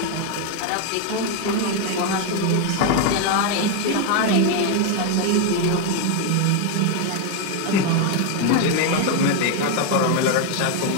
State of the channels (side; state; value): both; different; correlation 0.01